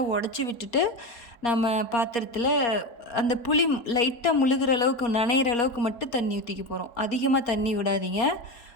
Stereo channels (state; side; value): late; right; 4.2 ms